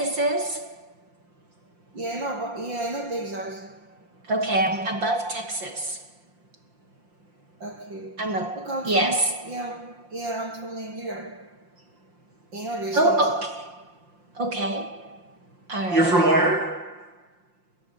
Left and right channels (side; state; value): left; late; 5.7 ms